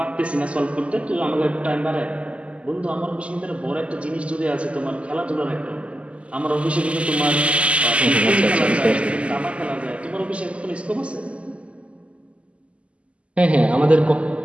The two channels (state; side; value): late; left; 0.059 ms